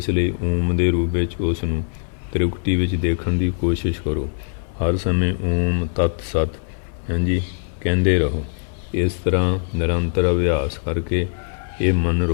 ਲਈ ਓਮ ਦੇ ਰੂਪ ਵਿੱਚ ਉਸ ਨੂੰ ਤ੍ਰਿਕੁਟੀ ਵਿੱਚ ਦੇਖਣ ਦੀ ਕੋਸ਼ਿਸ਼ ਕਰੋ। ਹਰ ਸਮੇਂ ਓਮ ਤਤ ਸਤ ਹਾਂਜੀ ਕਹਿੰਦੇ ਰਹੋ। ਇਸ ਤਰ੍ਹਾਂ ਨਿਰੰਤਰ ਅਭਿਆਸ ਕਰਕੇ ਇਹ ਮਨ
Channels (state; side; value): silent; right; 56 dB below the other